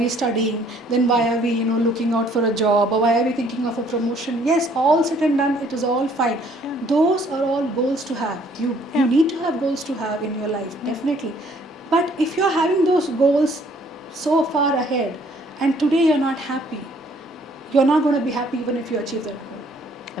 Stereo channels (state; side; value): normal; both; correlation 0.61